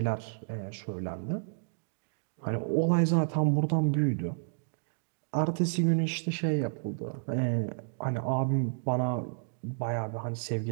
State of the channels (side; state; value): left; silent; digital silence